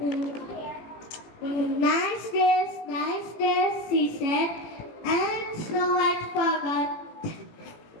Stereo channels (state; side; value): late; right; 18 ms